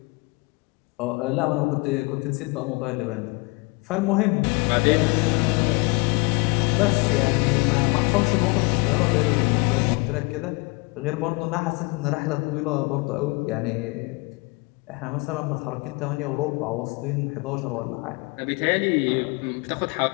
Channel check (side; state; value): right; quieter; 27.5 dB